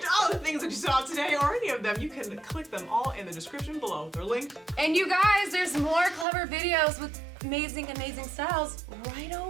all the things that you saw today or any of them, you can click them all in the description below. They're linked. And you guys, there's more clever videos with amazing, amazing styles right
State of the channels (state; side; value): drops out; left; at 6.2 s